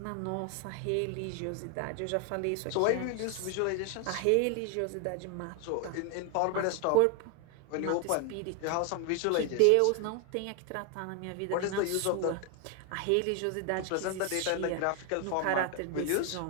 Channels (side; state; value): both; different; correlation 0.00